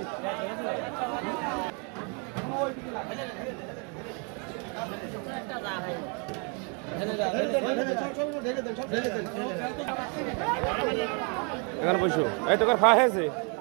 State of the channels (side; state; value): left; quieter; 36.3 dB